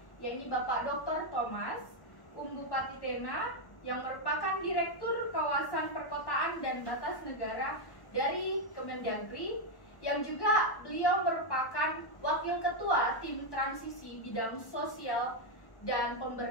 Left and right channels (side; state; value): right; late; 1.1 ms